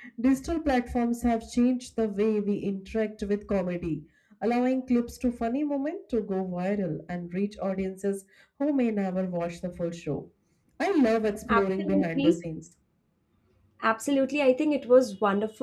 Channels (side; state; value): both; identical; correlation 1.00